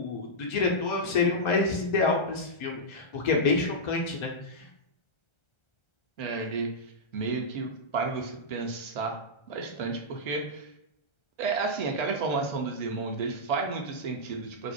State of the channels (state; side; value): late; right; 1.3 ms